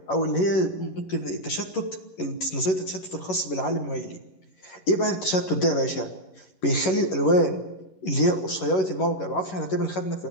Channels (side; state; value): right; late; 11 ms